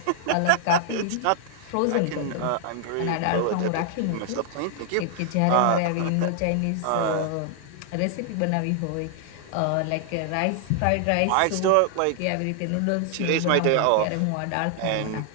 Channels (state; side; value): different; both; correlation -0.01